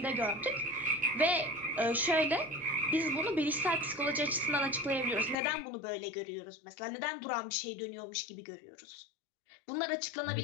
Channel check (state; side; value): drops out; right; at 5.4 s